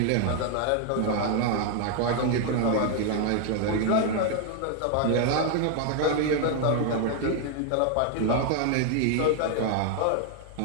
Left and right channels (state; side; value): different; both; correlation 0.00